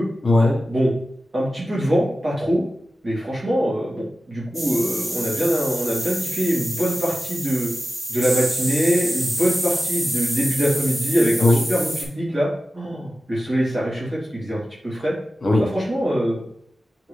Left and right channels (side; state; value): both; normal; correlation 0.94